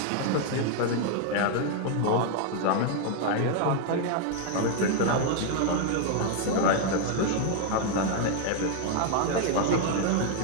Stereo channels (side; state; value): both; different; correlation 0.00